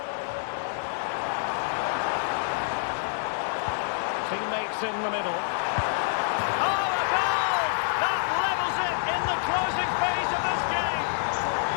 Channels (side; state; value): right; silent; 60 dB below the other